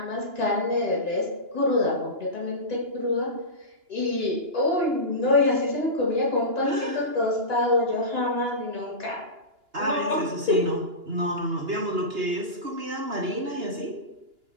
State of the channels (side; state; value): left; late; 2.9 ms